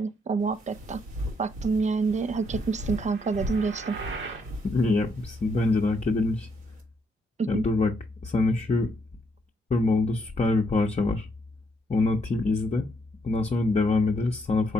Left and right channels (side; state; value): both; normal; correlation 0.74